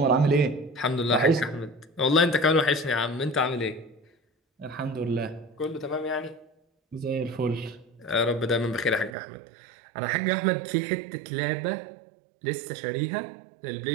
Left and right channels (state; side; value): drops out; left; at 9.2 s